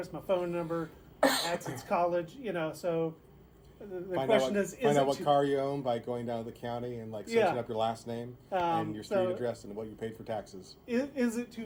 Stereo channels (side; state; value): both; identical; correlation 1.00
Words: my phone number, Adson's College, so the question is find out what car you own by going down to the county and searching up your last name and your street address and what you paid for taxes. Is it